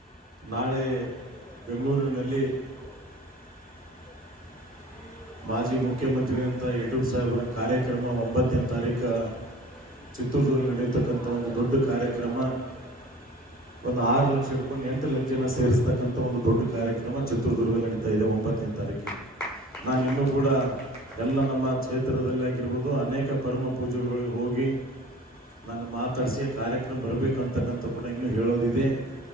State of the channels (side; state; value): both; normal; correlation 0.46